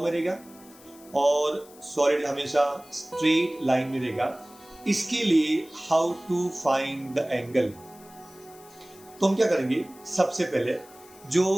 में रहेगा और सॉलिड हमेशा स्ट्रेट लाइन में रहेगा. इसके लिए how to find the angle? तो हम क्या करेंगे, सबसे पहले जो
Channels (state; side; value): noise; left; hiss, 23 dB below the sound